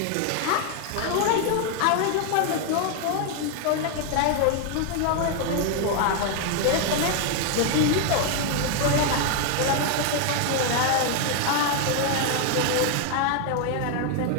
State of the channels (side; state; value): both; different; correlation 0.01